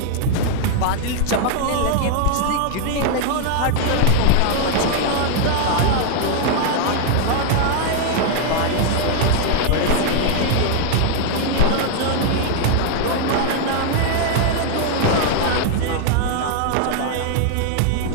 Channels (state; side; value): different; both; correlation 0.00